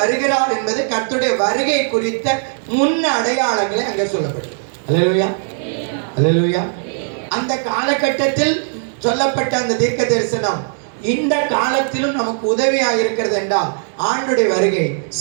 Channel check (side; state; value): left; silent; 67 dB below the other